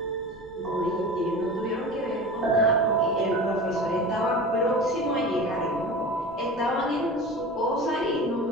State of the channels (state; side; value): normal; both; correlation 0.33